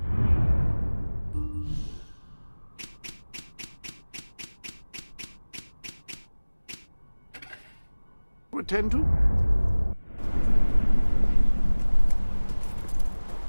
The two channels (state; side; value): inverted; both; correlation -1.00